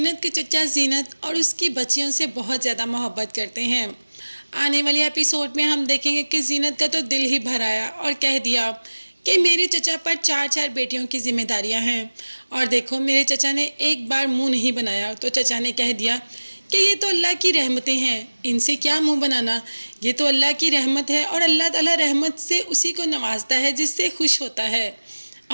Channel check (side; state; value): both; inverted; correlation -1.00